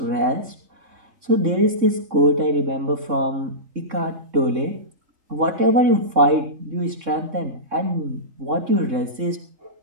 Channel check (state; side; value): late; left; 3.7 ms